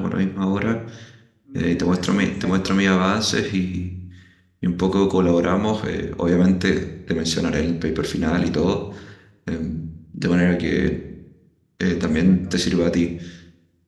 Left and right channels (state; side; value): identical; both; correlation 1.00